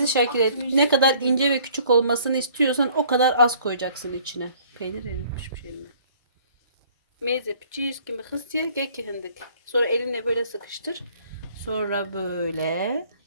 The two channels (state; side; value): inverted; both; correlation -0.57